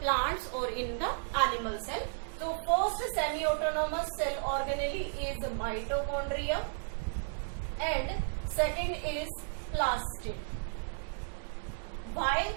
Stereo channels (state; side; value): silent; left; digital silence